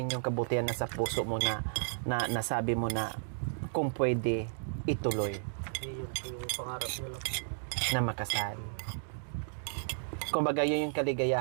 yung kabutihan na sa puso mo na nasabi mo na kung pwede ituloy Yun po yung pangarap nila. na makasal? Kumbaga yun yung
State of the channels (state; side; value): silent; left; digital silence